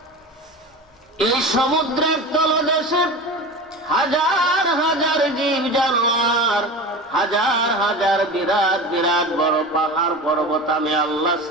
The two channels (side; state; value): both; normal; correlation 0.31